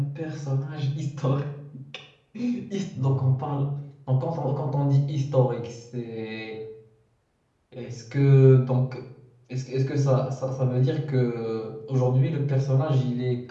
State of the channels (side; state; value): both; identical; correlation 1.00